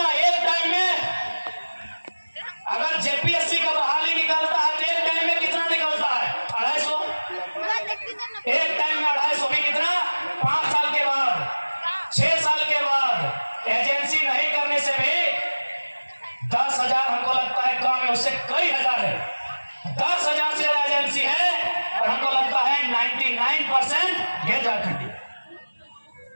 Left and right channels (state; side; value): inverted; both; correlation -1.00